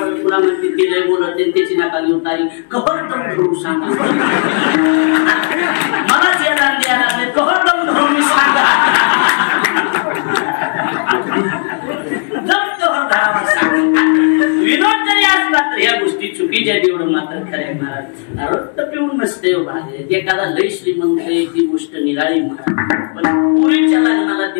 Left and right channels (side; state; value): right; quieter; 38.2 dB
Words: पुन्हा म्हणते ते लय बोलत त्याची नाका घेऊन तारी कहर दम धरून सांगा. मलाच यायला द्यायला लागले कहर दम धरून सांगा. विनोद जरी असला तर या गोष्टी चुकीच्या एवढं मात्र खरंय महाराज. आरोग्य पिऊन नसते भाग एखादा लय श्रीमंत आहे ती गोष्ट निराळी महाराज. पण पुरीच्या लग्नाला